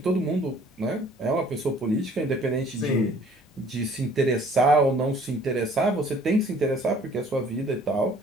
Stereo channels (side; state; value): both; normal; correlation 0.55